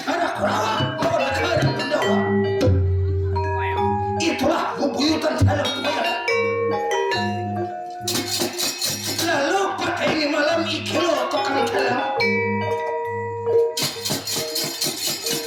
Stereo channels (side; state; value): both; identical; correlation 1.00